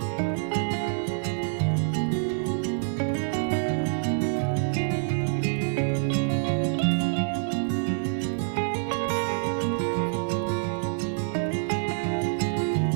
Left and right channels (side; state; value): left; silent; digital silence